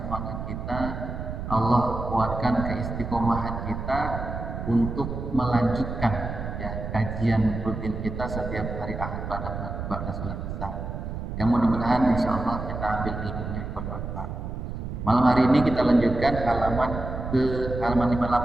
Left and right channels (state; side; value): noise; right; rumble, 6 dB below the sound